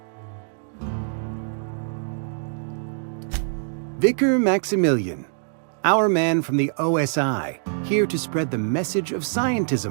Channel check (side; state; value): left; silent; digital silence